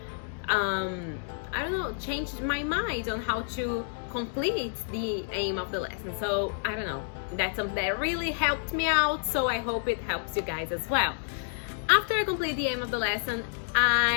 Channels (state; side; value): silent; right; digital silence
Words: changed my mind on how to complete the aim of the lesson. So I don't know, that's something that really helped me out, so I hope it helps you guys as well. After I complete the aim of the lesson,